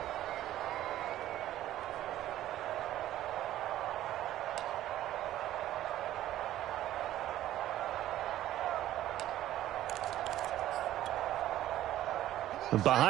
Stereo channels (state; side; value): quieter; left; 13.4 dB